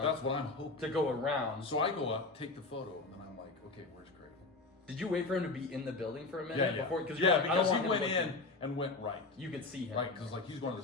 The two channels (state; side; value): quieter; right; 3.6 dB